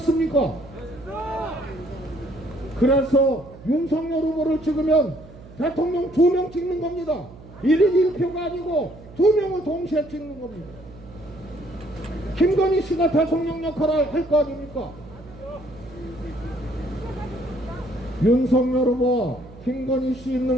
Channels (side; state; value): right; noise; hum, 19 dB below the sound